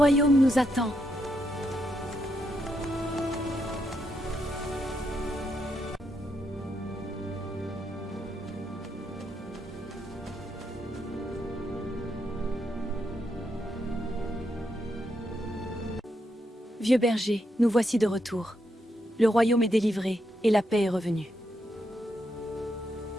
nous attend. Vieux berger, nous voici de retour. Le royaume est délivré et la paix est revenue.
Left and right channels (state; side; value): normal; both; correlation 0.80